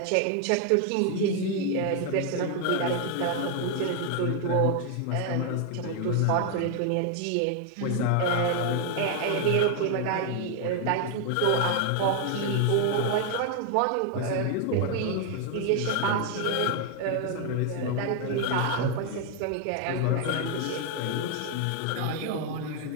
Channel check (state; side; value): different; both; correlation 0.00